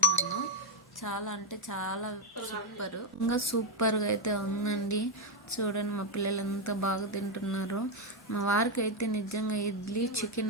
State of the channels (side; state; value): both; normal; correlation 0.04